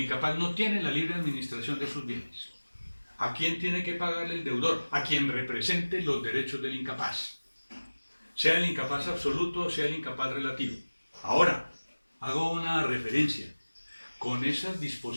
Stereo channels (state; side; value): inverted; both; correlation -1.00